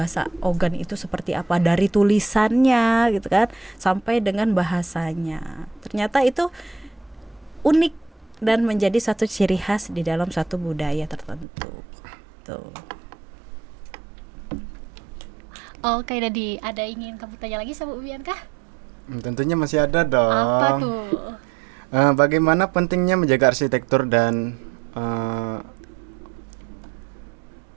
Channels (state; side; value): drops out; left; at 11.5 s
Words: Ogan itu seperti apa dari tulisannya gitu kan sampai dengan bahasanya. Ternyata itu unik dan menjadi satu ciri khas di dalam satu budaya tertentu. Tuh. Oke, Dadi, ada ingin kamu tanya lagi sama Uwian kah? Tentunya masih ada dong. Apa tuh? Bagaimana pentingnya menjaga arsitektur dan